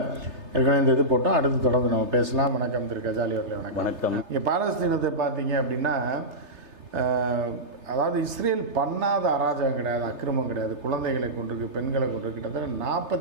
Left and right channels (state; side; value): late; left; 3.3 ms